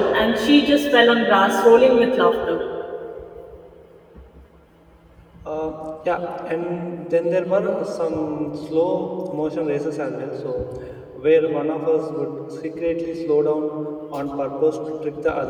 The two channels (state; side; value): identical; both; correlation 1.00